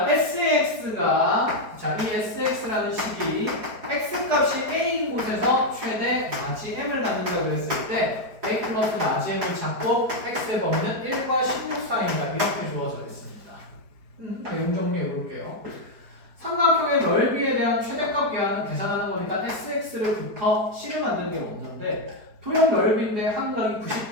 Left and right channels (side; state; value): left; late; 4.6 ms